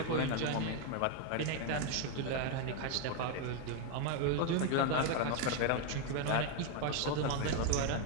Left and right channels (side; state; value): both; different; correlation 0.01